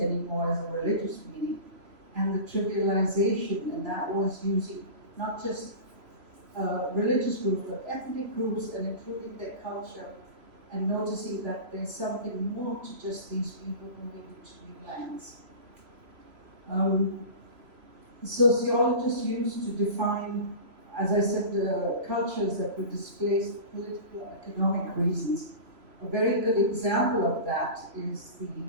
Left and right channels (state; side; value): late; left; 2.9 ms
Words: anymore as a religious meaning, and the trivialization, and that was using not just religious groups, but ethnic groups, and including their culture, and noticing that there's something more to just these people moving into new lands. Sociologists used to define, as I said, cultures that were displaced for political and economic reasons. A very good example of that is the